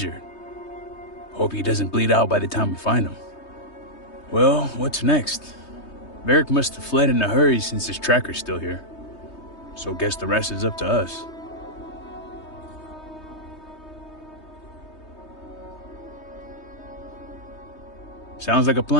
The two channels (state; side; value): late; right; 3.2 ms